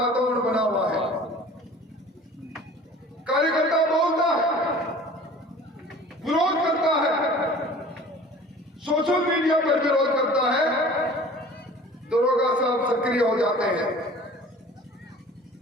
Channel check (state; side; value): normal; both; correlation 0.45